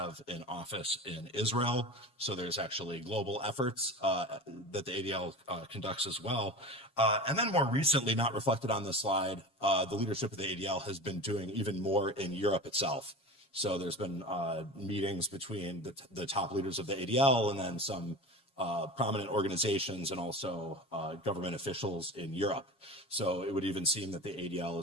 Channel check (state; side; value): late; right; 7.2 ms